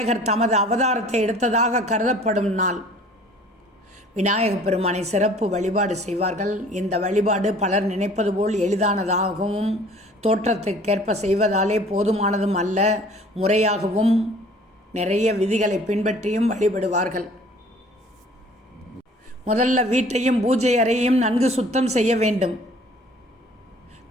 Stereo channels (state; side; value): normal; both; correlation 0.51